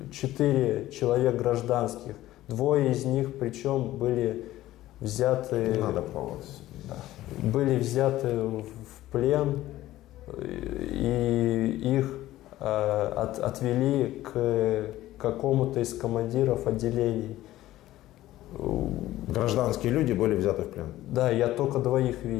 4 человек гражданских. 2 из них, причем, были взяты... Не надо пробовать. Да. Были взяты в плен, и их отвели к какому-то из командиров отделений. Гражданские люди были взяты в плен. Да, я только 2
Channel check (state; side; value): quieter; right; 15.2 dB